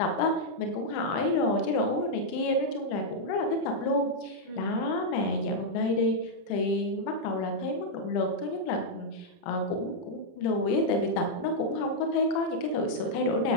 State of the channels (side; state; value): right; late; 30 ms